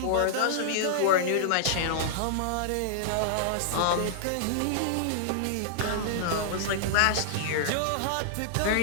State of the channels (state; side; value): different; both; correlation -0.01